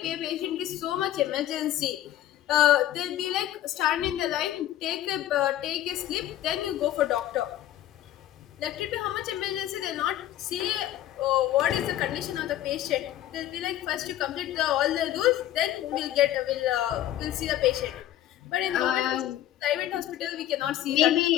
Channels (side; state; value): right; quieter; 12.8 dB